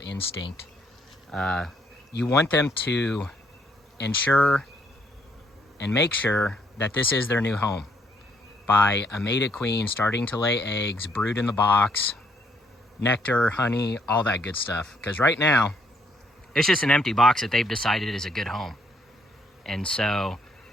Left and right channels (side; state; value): both; normal; correlation 0.71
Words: You want them to ensure and make sure that this is their new home by a mated queen starting to lay eggs, brood in the box, nectar, honey, all that good stuff. Because right now, it's just an empty box that they've decided is a good home. And so